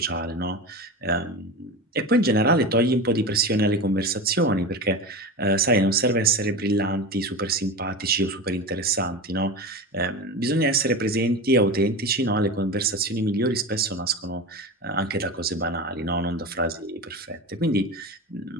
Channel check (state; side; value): normal; both; correlation 0.26